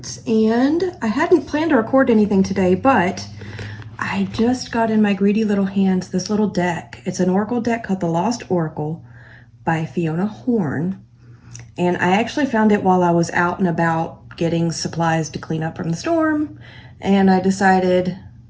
and I hadn't planned to record anything today, but I just got in my greedy little hands this little deck. It's an Oracle deck called the Lost Oracle by Fiona Horn, and I actually found it while I was out and about getting supplies to clean up from the storm, and I decided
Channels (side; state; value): both; identical; correlation 1.00